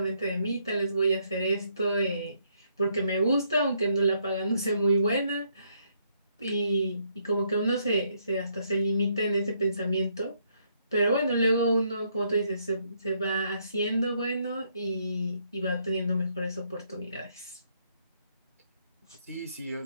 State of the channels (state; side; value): inverted; both; correlation -0.72